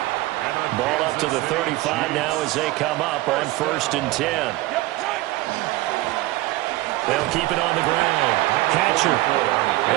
Ball up to the 35 now as they come up on first and 10. They'll keep it on the ground. Hatcher.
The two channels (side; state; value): left; quieter; 18.7 dB